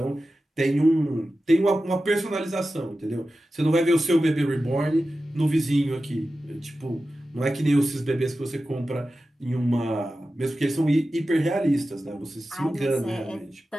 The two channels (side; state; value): both; normal; correlation 0.93